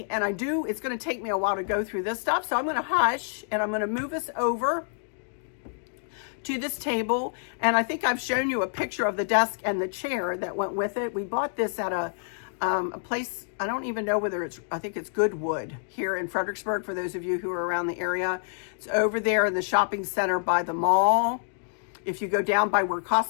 and it's going to take me a while to go through this stuff. So I'm going to hush, and I'm going to move us over to this table. And I think I've shown you a picture of the desk and the chair that went with it. We bought this at a place, I don't even know whether I think it's Goodwood here in Fredericksburg, for those of you who are around the area. It's over there in the shopping center by the mall. If you go down by where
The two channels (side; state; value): right; silent; digital silence